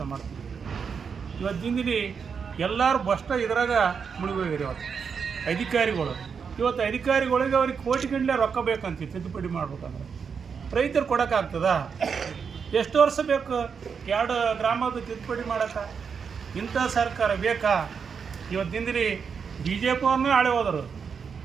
ಮಾಡ್ತೀವಿ? ಇವತ್ತಿಂದಿಲ್ಲಿ ಎಲ್ಲರೂ ಬಷ್ಟ ಇದ್ರಾಗ ಮುಳುಗೋಗಿರಿ. ಅಧಿಕಾರಿಗಳು ಇವತ್ತು ಅಧಿಕಾರಿಗಳಿಗೆ ಅವ್ರಿಗೆ ಕೋಟಿಗಟ್ಟಲೆ ರೊಕ್ಕ ಬೇಕಂತ ತಿದ್ದುಪಡಿ ಮಾಡ್ಬೇಕಂದ್ರೆ ರೈತರು ಕೊಡೋಕ್ಕಾಗ್ತದ? ಎಷ್ಟು ವರ್ಷ ಬೇಕು 2 ಗ್ರಾಮದ ತಿದ್ದುಪಡಿ ಮಾಡೋಕ್ಕೆ? ಇಂಥ ಸರ್ಕಾರ ಬೇಕಾ? ಇವತ್ತಿಂದಿರಿ ಬಿ ಜೆ ಪಿ ಅವ್ರನ್ನೇ ಆಳೆ ಹೋದರು,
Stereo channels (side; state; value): left; quieter; 6.2 dB